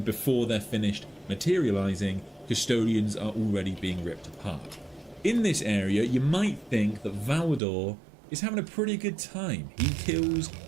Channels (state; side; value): drops out; left; at 7.6 s